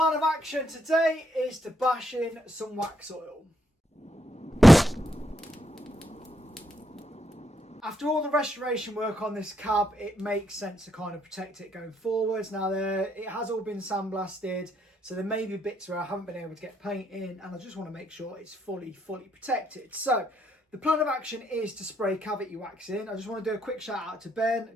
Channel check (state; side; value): normal; both; correlation 0.76